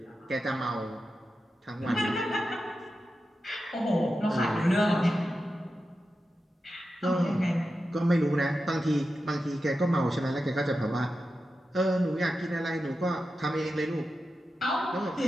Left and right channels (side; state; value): both; normal; correlation 0.91